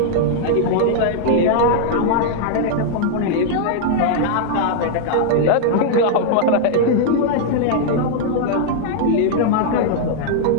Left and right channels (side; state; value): both; different; correlation -0.01